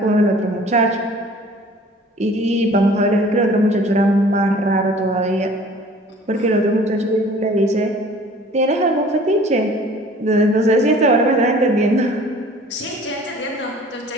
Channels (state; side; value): normal; both; correlation 0.49